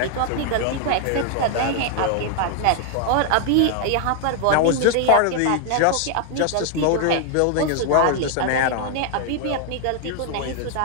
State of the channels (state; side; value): different; both; correlation 0.00